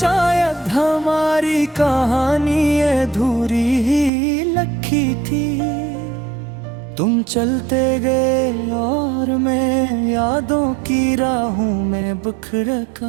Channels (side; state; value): left; drops out; at 4.1 s